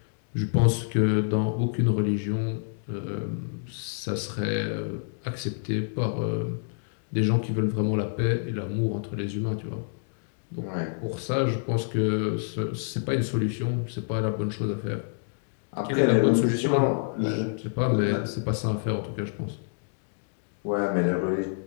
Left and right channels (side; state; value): right; silent; digital silence